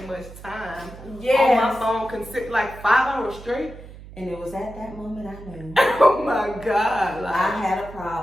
much time Yes. on my phone, like 5 hours straight. And it was at that moment I knew. Oh my God. Like, I had a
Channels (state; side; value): noise; right; hum, 16 dB below the sound